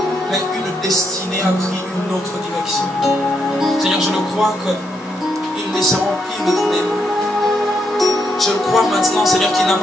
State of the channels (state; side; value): normal; both; correlation 0.78